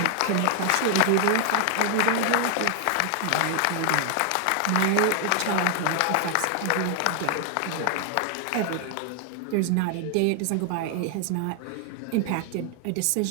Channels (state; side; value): different; both; correlation 0.00